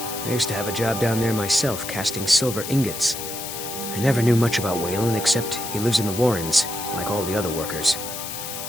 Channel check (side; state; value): left; noise; hiss, 7 dB below the sound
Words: I used to have a job down there myself, casting silver ingots. I never knew much about Wayland, except he lives in the Warrens, like all the other workers.